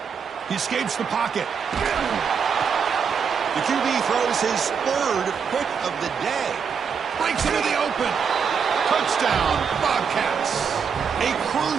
He escapes the pocket. The QB throws his 3rd pick of the day. Breaks into the open. Touchdown, Bobcats. A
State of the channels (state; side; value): quieter; left; 6.5 dB